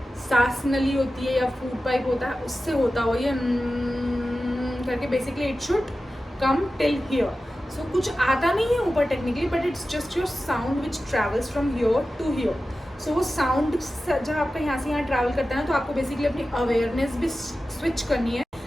सांस नली होती है या फूड पाइप होता है, उससे होता हुआ ये करके basically it should come till here. So कुछ आता नहीं है ऊपर technically, but it's just your sound which travels from here to here. So वो साउंड जब आपका यहाँ से यहाँ ट्रैवल करता है ना, तो आपको बेसिकली अपनी अवेयरनेस भी स्विच करनी है.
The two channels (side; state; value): both; normal; correlation 0.94